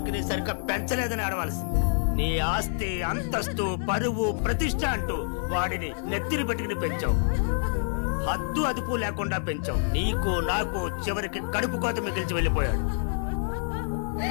సరిగ్గా పెంచలేదని ఆడవలసింది. నీ ఆస్తి, అంతస్తు, పరువు, ప్రతిష్ట అంటూ వాడిని నెత్తిని పెట్టుకుని పెంచావు. హద్దు అదుపు లేకుండా పెంచావు. నీకు నాకు చివరికి కడుపు కోత మిగిల్చి వెళ్ళిపోయాడు.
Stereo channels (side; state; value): right; silent; 60 dB below the other